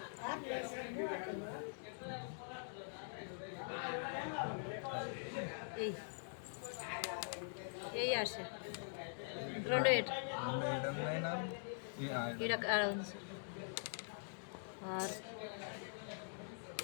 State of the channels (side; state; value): right; silent; digital silence